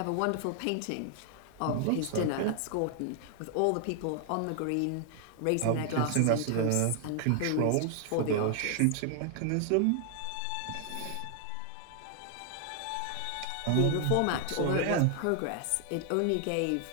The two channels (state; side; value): different; both; correlation 0.00